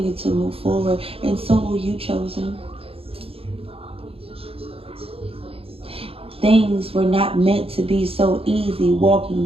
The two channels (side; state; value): left; late; 0.27 ms